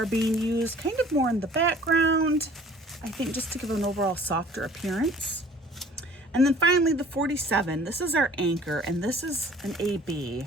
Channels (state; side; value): normal; both; correlation 0.51